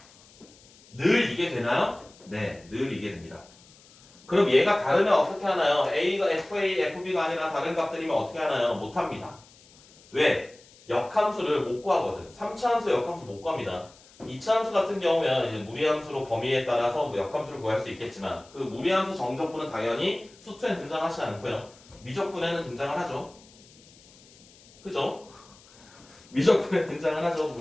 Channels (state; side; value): noise; left; hiss, 25 dB below the sound